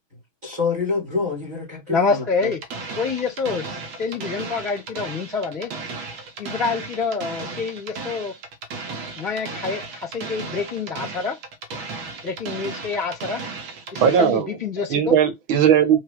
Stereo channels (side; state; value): left; late; 6.1 ms